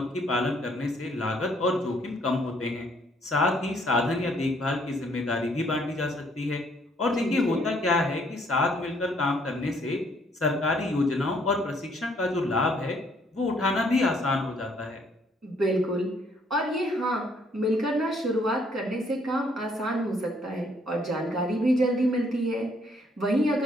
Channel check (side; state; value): both; normal; correlation 0.66